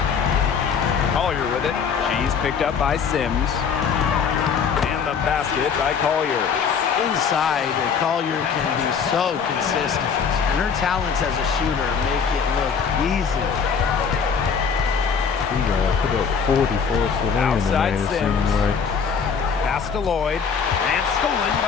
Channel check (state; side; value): quieter; right; 6.4 dB